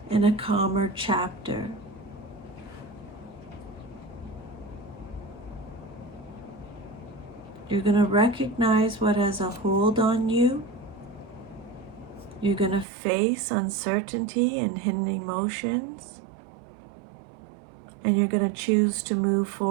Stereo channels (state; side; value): drops out; left; at 12.9 s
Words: and a calmer chapter. You're going to recognize what has a hold on you. You're going to face uncertainty and hidden emotions. And you're going to choose to move